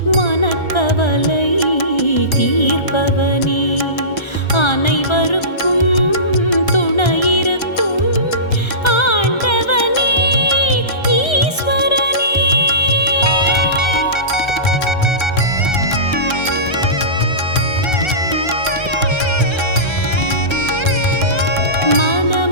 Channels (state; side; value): late; right; 1.3 ms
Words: மனக்கவலை தீர்ப்பவனே அனைவருக்கும் துணையிருக்கும் ஆண்டவனே ஈஸ்வரனே